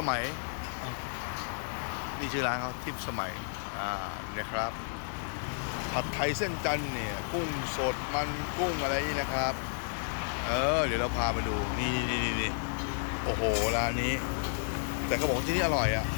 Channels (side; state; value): right; silent; digital silence